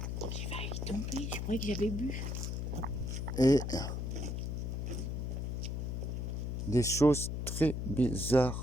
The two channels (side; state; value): left; noise; hum, 2 dB below the sound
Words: J'ai failli tomber, je croyais que j'avais bu. Et des choses très